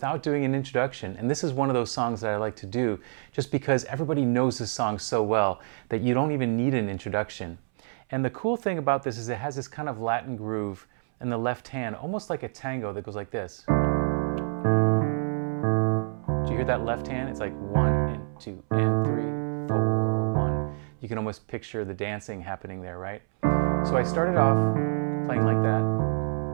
doing an introduction, and this is one of those songs that I like to do just because everybody knows this song so well that you don't even need an introduction. And the cool thing about this is it has this kind of Latin groove in the left hand, almost like a tango that goes like this. Do you hear that left hand? It's like 1 and 2 and 3, 4, 1. You can almost picture the dancing happening there, right? So I started off playing like that.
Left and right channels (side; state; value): left; silent; 60 dB below the other